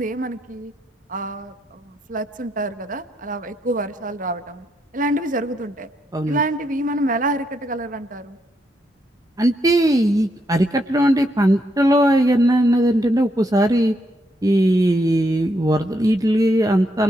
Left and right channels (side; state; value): both; normal; correlation 0.78